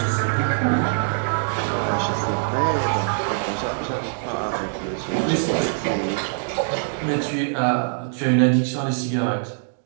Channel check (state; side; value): silent; left; digital silence